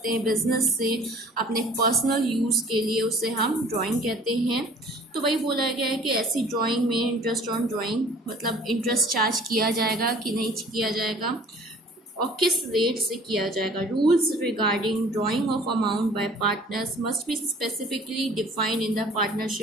हैं बिजनेस से अपने पर्सनल यूज़ के लिए, उसे हम ड्राइंग कहते हैं। तो वही बोला गया है कि ऐसी ड्राइंग में इंटरेस्ट ऑन ड्राइंग मतलब इंटरेस्ट चार्ज किया जाएगा कि नहीं किया जाएगा और किस रेट से किया जाएगा। Rules regarding drawing of amount by partners must be specifically defined in the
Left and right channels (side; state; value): both; normal; correlation 0.49